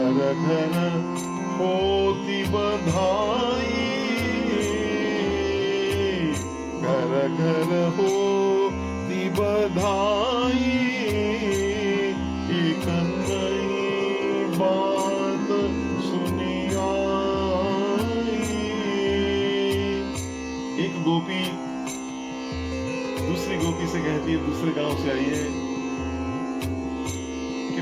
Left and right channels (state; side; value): noise; right; hum, 29 dB below the sound